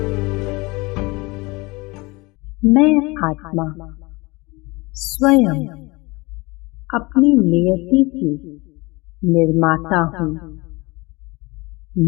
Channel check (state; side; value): quieter; right; 24.4 dB